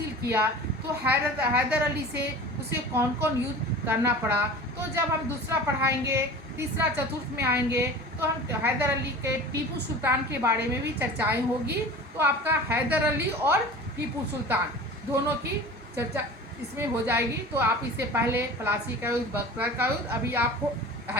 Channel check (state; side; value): normal; both; correlation 0.38